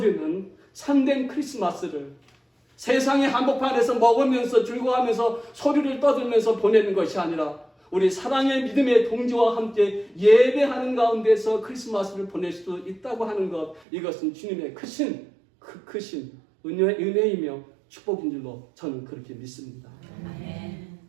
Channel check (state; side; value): drops out; left; at 13.8 s